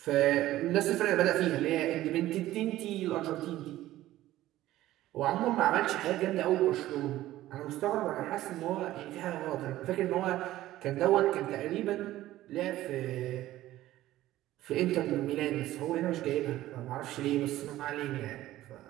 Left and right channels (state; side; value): quieter; left; 15.0 dB